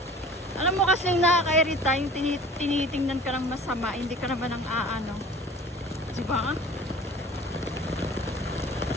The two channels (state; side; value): normal; both; correlation 0.44